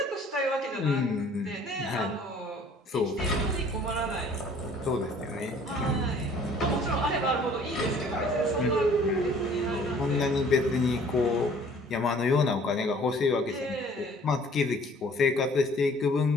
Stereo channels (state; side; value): normal; both; correlation 0.54